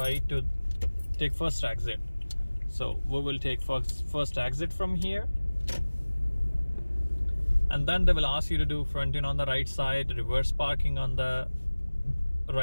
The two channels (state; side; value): inverted; both; correlation -1.00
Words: to take first exit. So we will take first exit from here, and then they will ask you to do front in on the right side, reverse parking on the